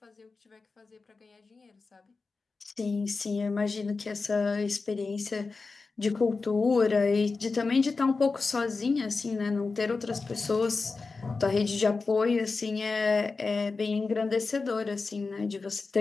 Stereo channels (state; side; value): quieter; right; 4.2 dB